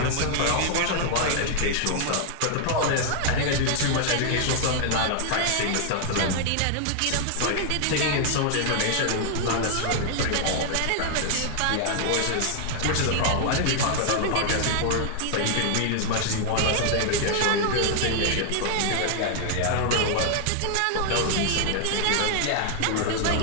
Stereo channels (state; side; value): different; both; correlation 0.00